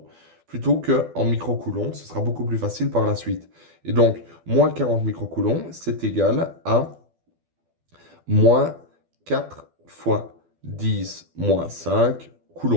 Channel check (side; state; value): left; late; 12 ms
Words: plutôt qu'en microcoulombs. Ce sera beaucoup plus facile par la suite. Et donc, moins 40 microcoulombs, c'est égal à moins 4 fois 10 moins 5